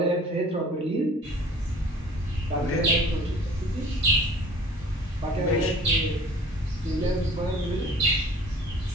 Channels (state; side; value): normal; both; correlation 0.48